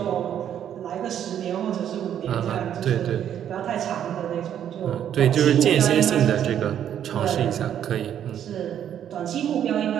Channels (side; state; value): left; quieter; 9.9 dB